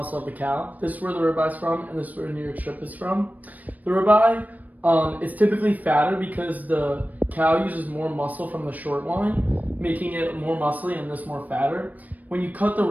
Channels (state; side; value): late; left; 0.078 ms